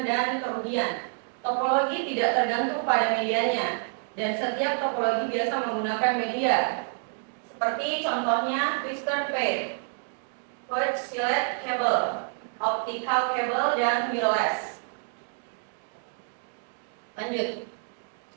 dan kerugian. Topologi tidak tergantung pada medianya, dan setiap topologi biasa menggunakan media, seperti contohnya twister pair, coaxial cable, optical cable, dan wireless. Lanjut.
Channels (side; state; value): left; silent; 57 dB below the other